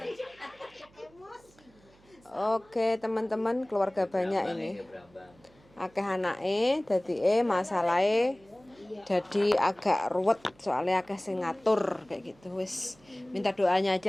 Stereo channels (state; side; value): noise; right; hum, 29 dB below the sound